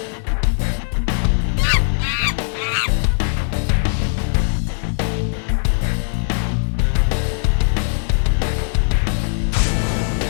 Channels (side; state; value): right; silent; digital silence